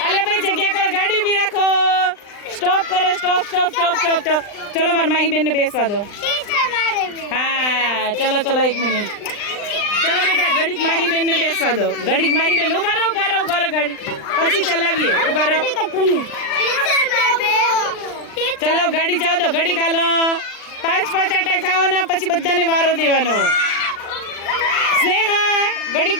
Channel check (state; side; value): late; right; 39 ms